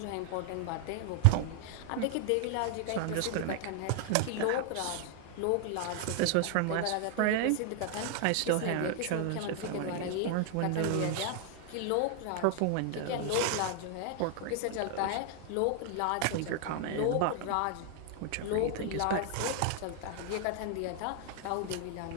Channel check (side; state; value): both; different; correlation 0.00